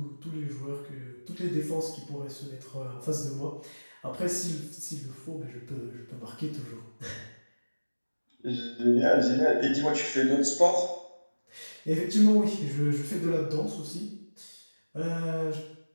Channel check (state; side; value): inverted; both; correlation -1.00